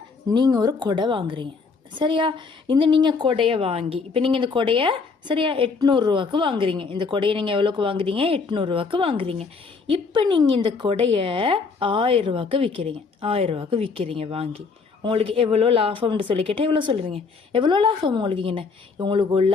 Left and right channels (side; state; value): right; quieter; 4.7 dB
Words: நீங்கள் ஒரு கொடை வாங்குறீங்க, சரியா? நீங்கள் கொடையை வாங்கி இப்போ நீங்கள் இந்த கொடையை சரியா 800 வாங்குறீங்க. இந்த கொடையை நீங்கள் எவ்வளோக்கு வாங்குறீங்க? 800 வாங்குறீங்க. இப்போ நீங்கள் இந்த கொடையை 1000 விற்கிறீங்க. 1000 விற்கிறீங்க வாங்கி. உங்களுக்கு எவ்வளோ லாபம்னு சொல்லி கேட்டால் எவ்வளோ சொல்லுவீங்க? எவ்வளோ லாபம் உங்களுக்கு இங்கே? உங்களுக்கு